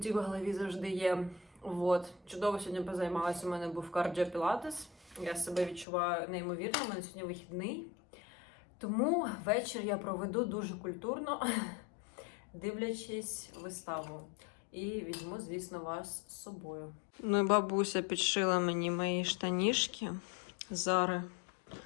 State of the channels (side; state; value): right; drops out; at 5.9 s